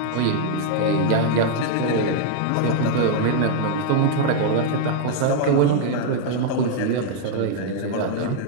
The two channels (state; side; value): different; both; correlation 0.00